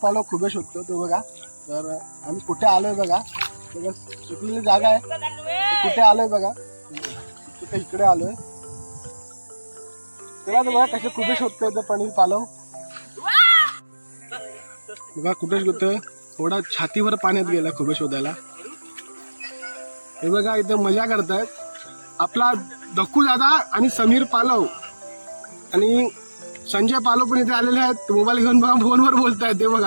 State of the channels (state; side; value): inverted; both; correlation -1.00